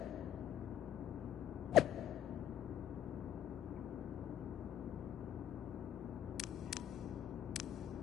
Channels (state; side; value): quieter; right; 10.4 dB